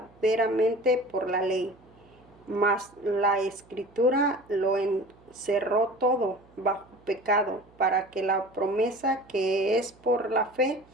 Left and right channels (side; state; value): right; noise; hum, 28 dB below the sound